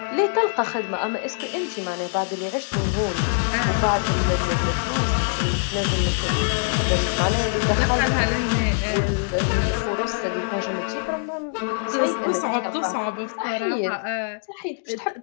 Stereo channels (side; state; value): right; silent; digital silence